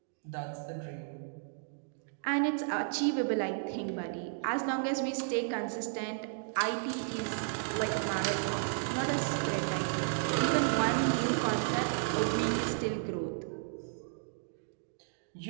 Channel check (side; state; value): left; silent; digital silence